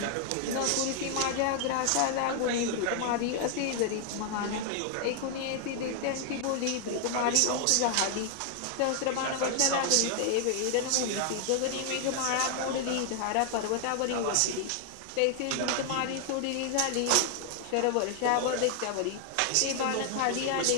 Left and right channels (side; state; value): both; different; correlation 0.00